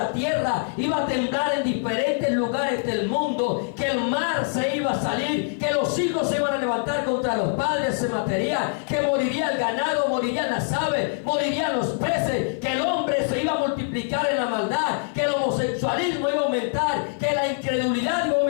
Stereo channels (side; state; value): right; silent; digital silence